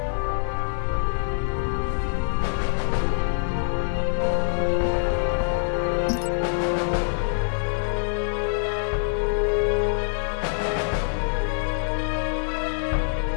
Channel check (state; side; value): silent; right; digital silence